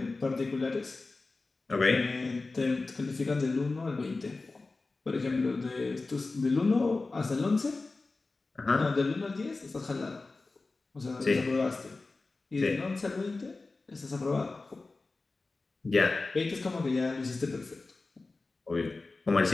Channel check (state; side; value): quieter; right; 3.6 dB